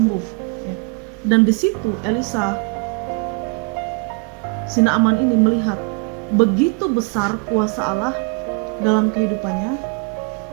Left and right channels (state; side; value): quieter; left; 32.9 dB